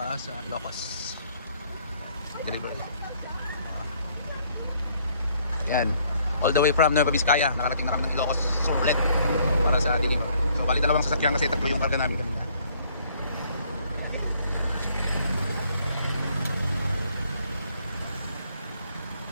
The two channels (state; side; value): inverted; both; correlation -0.64